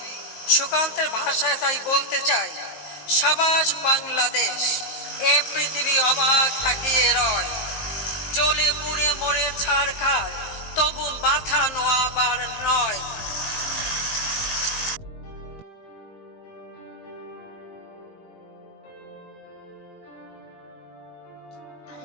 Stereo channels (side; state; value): right; late; 19 ms